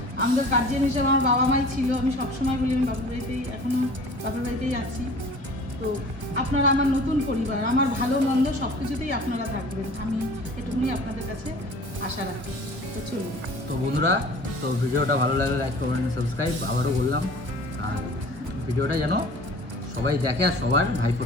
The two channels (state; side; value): late; left; 1.3 ms